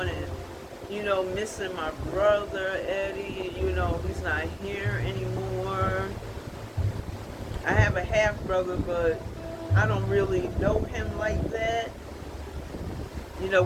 and missing my brother Eddie. He's not here anymore. I have a half brother, but I don't really know him like that.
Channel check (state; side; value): identical; both; correlation 1.00